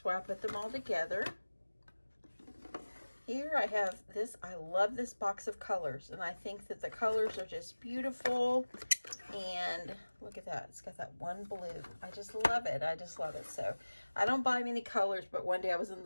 why I put them all together. Here I have this, I love this box of colors, and I think that the colors are just beautiful. And look at that, it's got that one blue. I just love it, I just love it. So I don't buy many colors, but one day I was in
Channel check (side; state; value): both; inverted; correlation -1.00